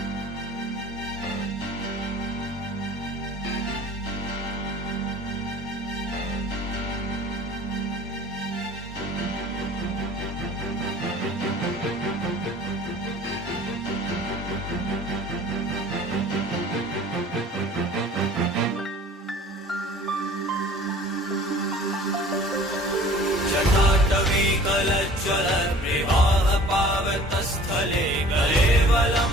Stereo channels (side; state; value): both; normal; correlation 0.48